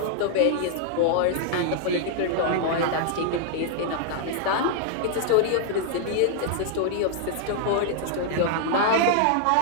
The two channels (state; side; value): different; both; correlation -0.01